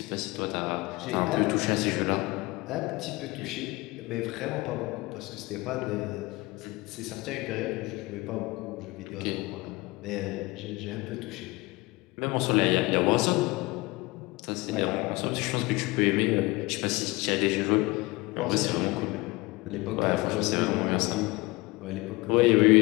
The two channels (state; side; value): quieter; right; 22.8 dB